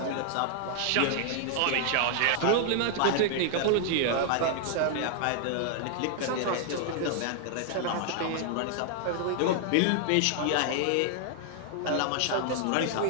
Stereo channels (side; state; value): both; different; correlation 0.00